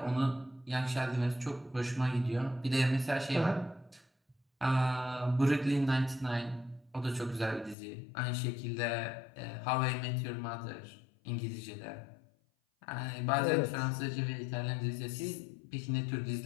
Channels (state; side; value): drops out; right; at 7.8 s